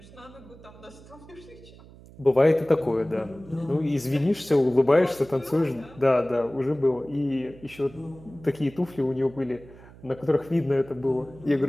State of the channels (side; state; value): right; noise; hum, 21 dB below the sound